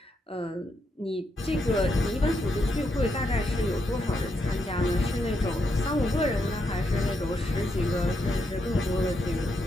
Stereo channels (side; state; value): both; normal; correlation 0.80